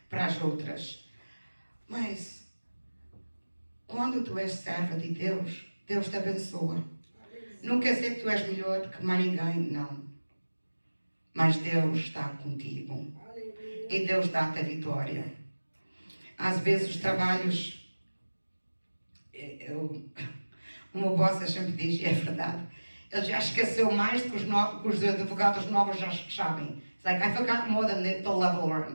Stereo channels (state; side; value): inverted; both; correlation -1.00